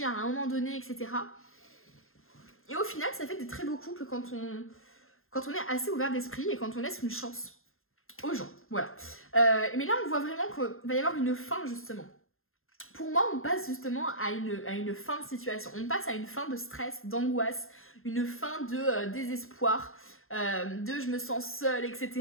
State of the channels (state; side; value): late; right; 0.61 ms